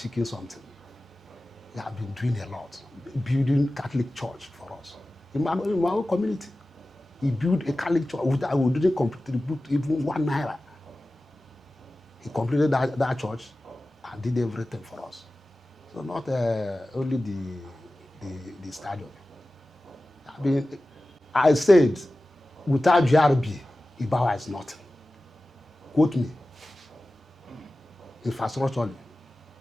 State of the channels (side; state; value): both; normal; correlation 0.96